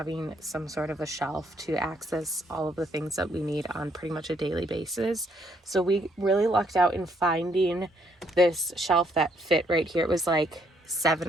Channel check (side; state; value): both; normal; correlation 0.70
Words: some sort of a shelf to access all of the things that we need on pretty much a daily basis. So we really lucked out in finding this shelf that fit right here. It was like